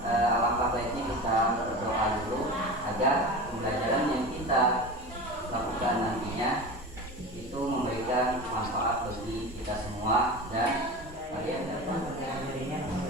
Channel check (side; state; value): both; normal; correlation 0.30